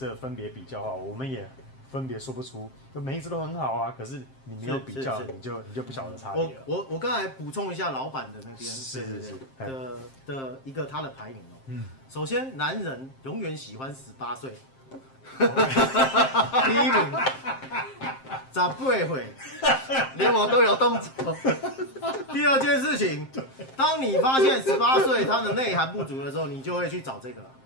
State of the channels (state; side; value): late; right; 7.6 ms